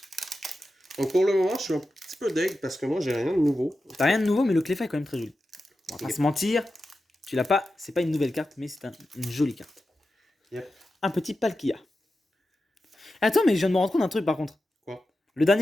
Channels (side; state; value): both; normal; correlation 0.91